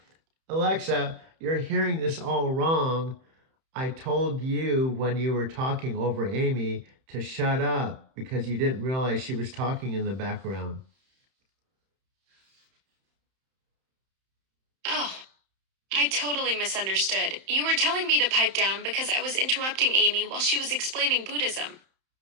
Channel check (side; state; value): left; late; 31 ms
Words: Alexa, you're hearing this all wrong. I told you when you were talking over Amy to shut up because you didn't realize she was talking in the background. Oh, I totally misunderstood. You were telling me to pipe down because I was interrupting Amy while she was explaining Buddhism.